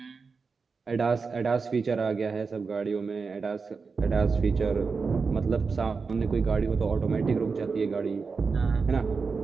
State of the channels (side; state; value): left; quieter; 4.8 dB